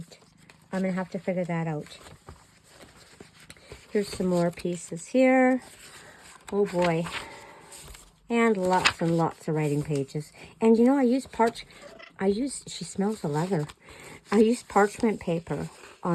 I'm going to have to figure that out. Here's some more pieces here. Oh, boy. And lots of writing pages. And, you know, she smells the leather. I used parchment paper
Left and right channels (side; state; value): both; identical; correlation 1.00